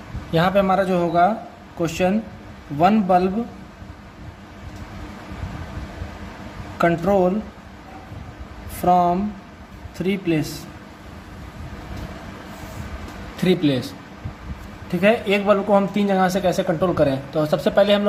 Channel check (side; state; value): both; identical; correlation 1.00